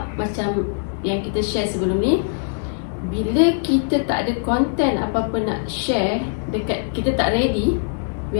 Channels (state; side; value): silent; right; digital silence